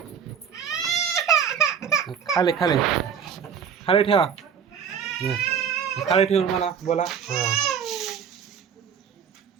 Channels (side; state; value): left; quieter; 7.6 dB